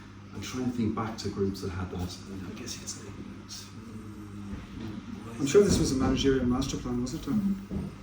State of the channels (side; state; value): both; identical; correlation 1.00